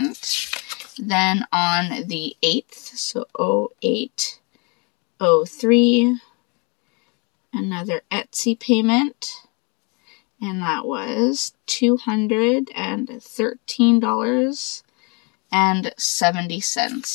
Then on the 8th, so 08/03, another Etsy payment. And that was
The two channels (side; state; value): right; quieter; 31.4 dB